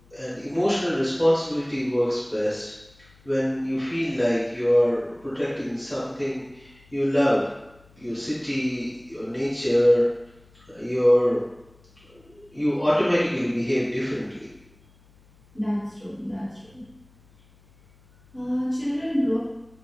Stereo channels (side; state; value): left; noise; hum, 29 dB below the sound